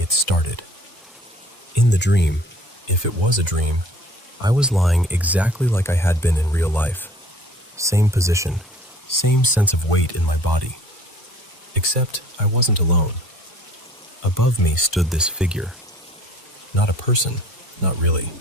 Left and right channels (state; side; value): normal; both; correlation 0.51